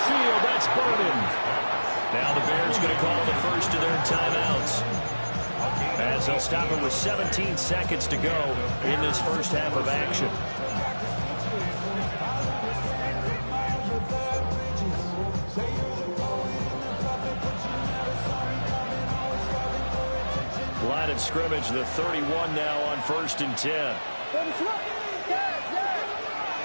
field, that's Burden. Now the Bears going to call the first of their timeouts, as they'll stop it with 17 seconds to go in this first half of action. Line of scrimmage, the 31 now on 1st and 10.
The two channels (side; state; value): both; inverted; correlation -1.00